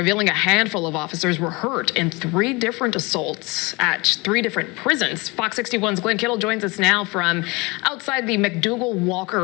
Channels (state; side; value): quieter; right; 25.5 dB